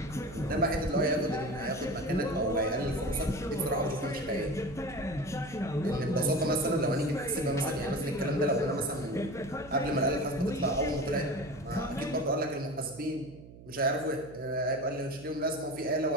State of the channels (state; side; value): noise; right; hum, 18 dB below the sound